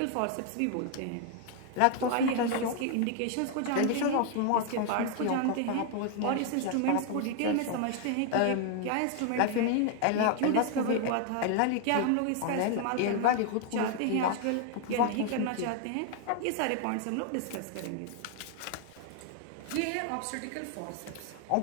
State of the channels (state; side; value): different; both; correlation 0.00